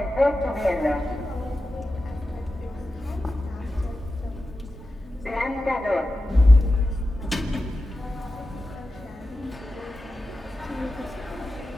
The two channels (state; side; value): normal; both; correlation 0.92